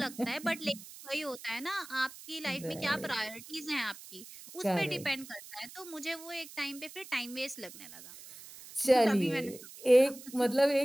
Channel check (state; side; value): noise; right; hiss, 16 dB below the sound